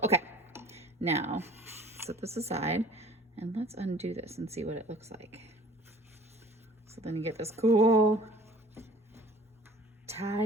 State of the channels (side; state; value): both; normal; correlation 0.49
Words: Okay, now set this aside and let's undo this and see what it looks like. So then you get this cool